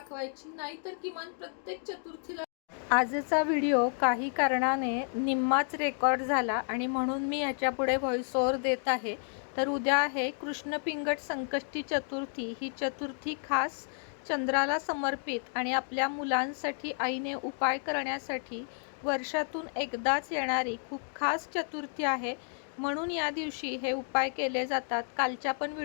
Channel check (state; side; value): silent; right; 57 dB below the other